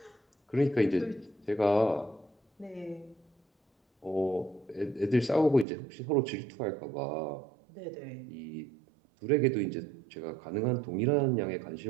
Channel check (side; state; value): left; drops out; at 5.7 s